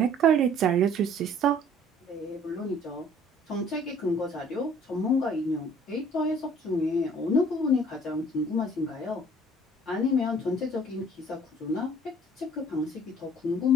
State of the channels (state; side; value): normal; both; correlation 0.54